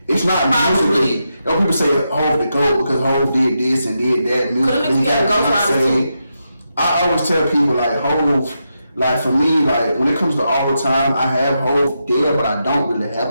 It's not musically. You know, people say Hov the GOAT because Hov did this and did that musically. He got Beyonce. I always tell people like Hov, like for me, like when it comes to all the time, I have Hov there, but I don't really have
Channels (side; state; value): both; inverted; correlation -0.85